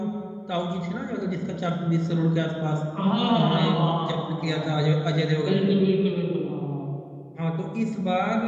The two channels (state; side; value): identical; both; correlation 1.00